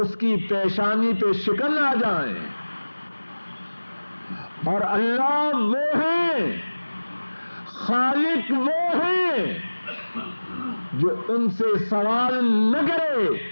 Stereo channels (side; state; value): both; inverted; correlation -1.00